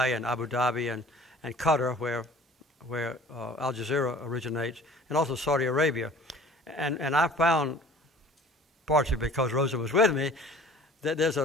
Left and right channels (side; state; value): both; normal; correlation 0.48